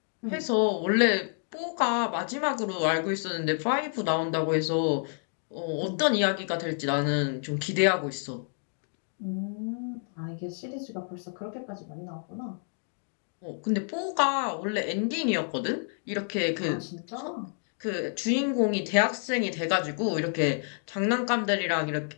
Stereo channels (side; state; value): right; silent; 59 dB below the other